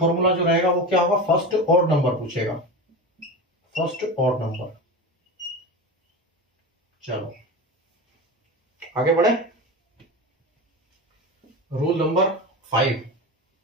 जो रहेगा वो क्या होगा, फर्स्ट ऑड नंबर पूछेगा, फर्स्ट ऑड नंबर। चलो आगे बढ़े, रूल नंबर 5।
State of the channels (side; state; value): both; normal; correlation 0.26